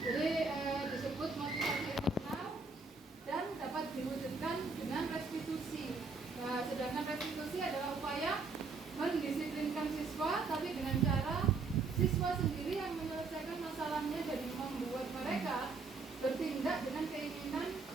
Jadi disebut motivasi eksternal dan dapat diwujudkan dengan restitusi. Nah, sedangkan restitusi adalah upaya mendisiplinkan siswa, tapi dengan cara siswa sendiri yang menyelesaikan masalahnya dan membuat mereka bertindak dengan keinginan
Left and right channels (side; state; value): left; quieter; 4.2 dB